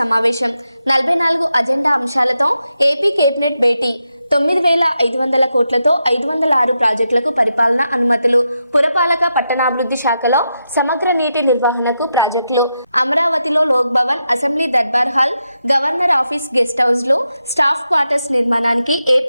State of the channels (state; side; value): inverted; both; correlation -0.86